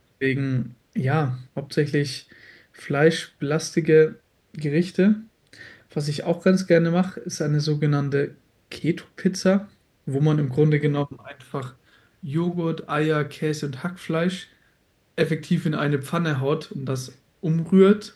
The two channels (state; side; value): identical; both; correlation 1.00